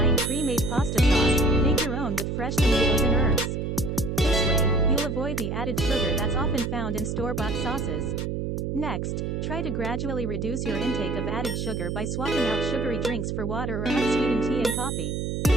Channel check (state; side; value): noise; right; hum, 2 dB below the sound